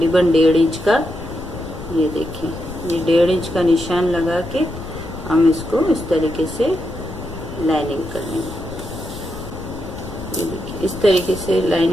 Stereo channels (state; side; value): noise; left; rumble, 12 dB below the sound